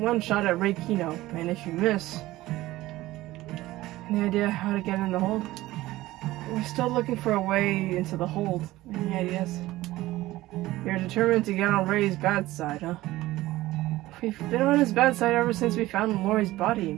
one shot at Ray Kino, and if you miss... Any idea how to get in the hold? We're still looking for a way into the hold. Any ideas? You're determined to get on Ray's bad side, huh? We've been on his bad side ever since we found Lori's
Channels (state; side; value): quieter; left; 17.2 dB